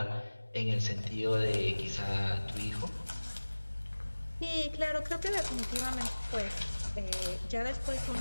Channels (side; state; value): both; inverted; correlation -1.00